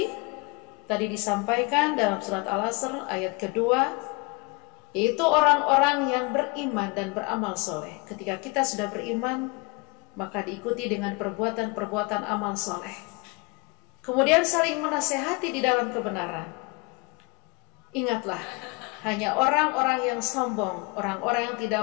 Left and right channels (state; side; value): quieter; right; 28.5 dB